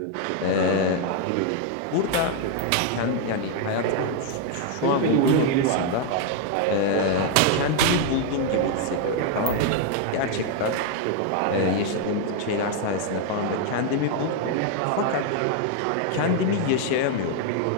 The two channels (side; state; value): both; different; correlation 0.01